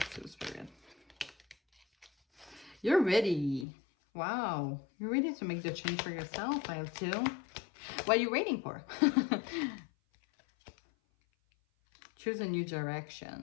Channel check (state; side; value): drops out; right; at 3.7 s